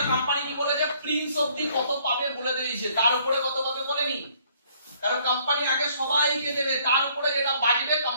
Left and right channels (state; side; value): inverted; both; correlation -0.63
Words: কোম্পানি কি বলে যে প্রিন্স অবধি কত পাবে বলে দিয়েছে, তার উপরে কত পাবে বলেনি। কারণ কোম্পানি আগে সবাইকে দেবে, তার উপরে যেটা বাজবে